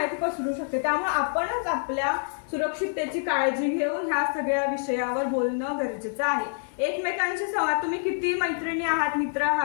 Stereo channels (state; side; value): silent; right; 60 dB below the other